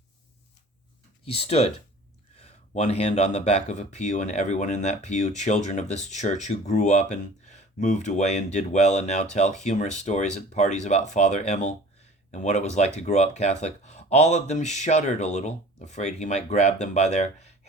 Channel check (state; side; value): normal; both; correlation 0.45